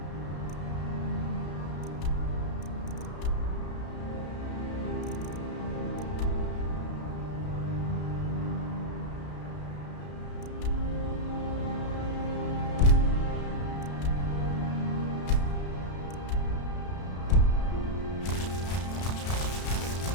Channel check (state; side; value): late; right; 33 ms